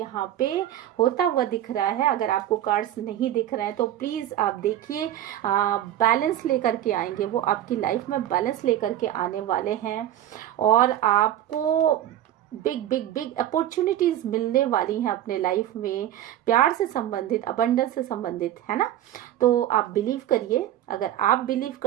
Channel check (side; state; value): left; quieter; 12.2 dB